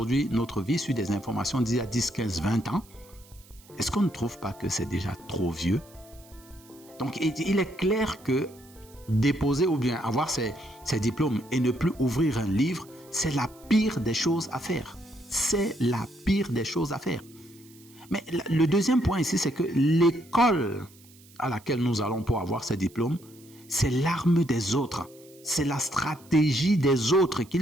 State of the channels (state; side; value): noise; right; hiss, 25 dB below the sound